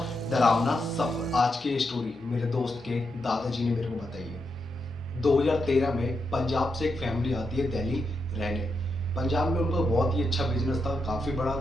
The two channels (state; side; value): normal; both; correlation 0.84